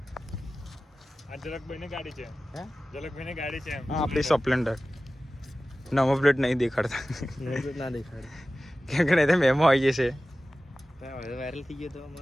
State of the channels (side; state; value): both; normal; correlation 0.96